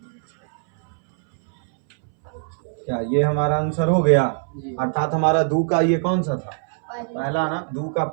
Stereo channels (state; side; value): silent; left; 63 dB below the other